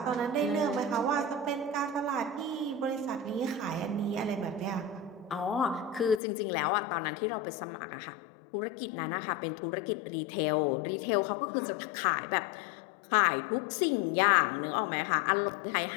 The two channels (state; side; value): drops out; right; at 6.2 s